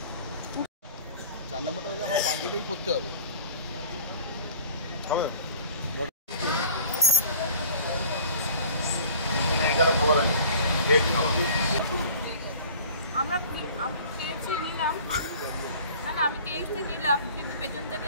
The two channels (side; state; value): both; inverted; correlation -0.46